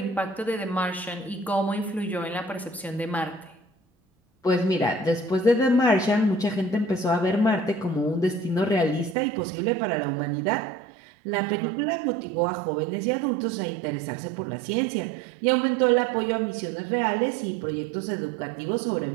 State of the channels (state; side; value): drops out; left; at 9.2 s